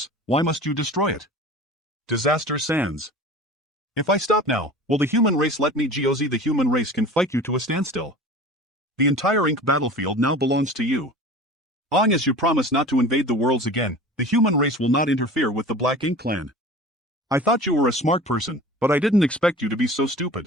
why must you destroy it? Disaster Sans. If I stop now, will the human race let me GOZ? The human race can fight you to a standstill. The entire Ink battlefield now belongs to you. Long as you promise not to invade the worlds again, the human race will not interfere with the Black Ink clan. I thought you were a smart person, but I didn't expect you to be so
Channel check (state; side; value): normal; both; correlation 0.39